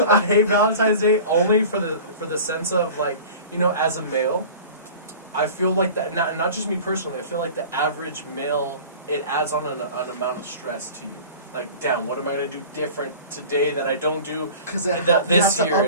I hate Valentine's Day only for the sense of like as a male, I feel like that not just me personally. I feel like the average male, it adds on an amount of stress to you. Like, damn, what am I gonna do different today that I don't do Because this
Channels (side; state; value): both; inverted; correlation -0.40